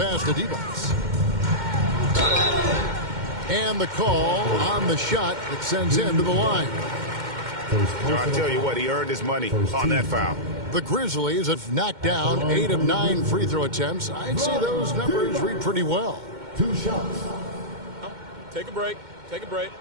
to Divac. And the call on the shot that sends him to the line. I tell you what, he earned his money on that foul. The Grizzlies have knocked down 8 of 9 free throw attempts. I'd say those numbers read pretty well. 2 shots. Take a break. Take a break.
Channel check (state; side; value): late; left; 2.1 ms